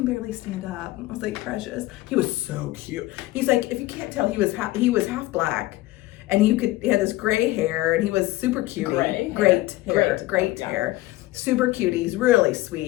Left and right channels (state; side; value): quieter; right; 17.9 dB